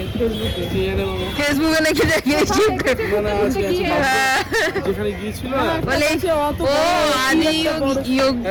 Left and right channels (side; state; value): both; identical; correlation 1.00